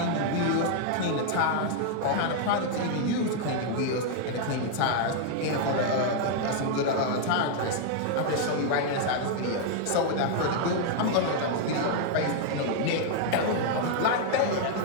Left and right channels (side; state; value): both; different; correlation 0.00